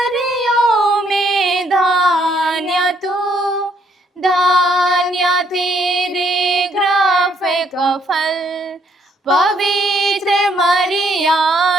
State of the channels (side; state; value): both; normal; correlation 0.70